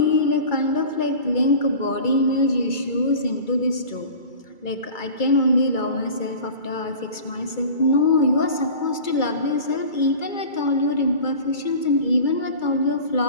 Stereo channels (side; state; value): right; late; 2.3 ms